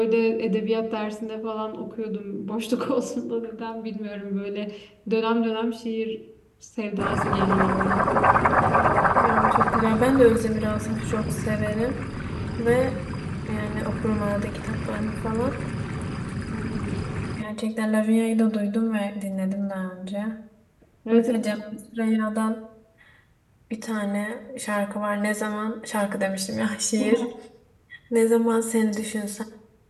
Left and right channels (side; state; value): both; identical; correlation 1.00